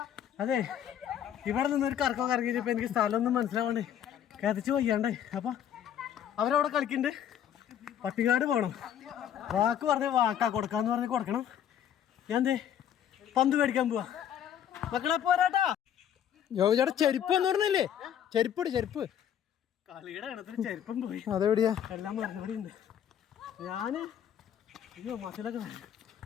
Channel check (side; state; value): right; quieter; 9.7 dB